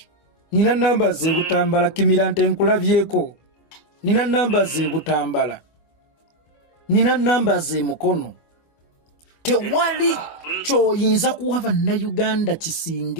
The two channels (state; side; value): late; right; 24 ms